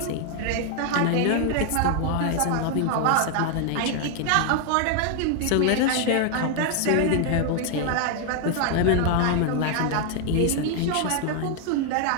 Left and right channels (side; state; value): both; different; correlation 0.00